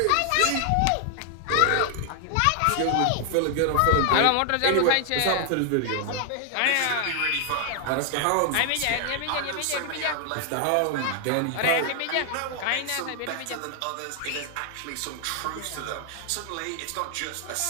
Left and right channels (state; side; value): different; both; correlation 0.00